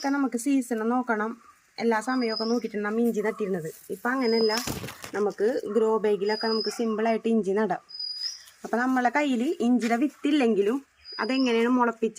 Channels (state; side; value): identical; both; correlation 1.00